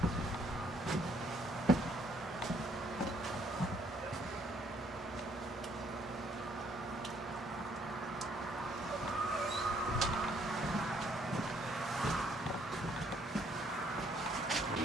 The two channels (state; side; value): normal; both; correlation 0.66